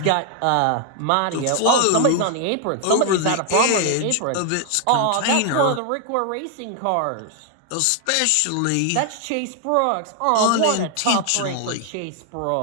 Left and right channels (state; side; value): different; both; correlation 0.00